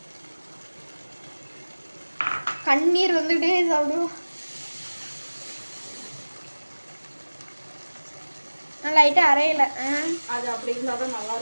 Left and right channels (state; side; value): inverted; both; correlation -1.00